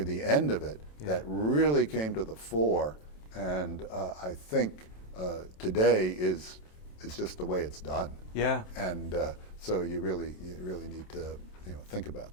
the end of it that really came to the fore, and I think today is just the way it's done. Yeah. And so you really need to think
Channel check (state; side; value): late; right; 27 ms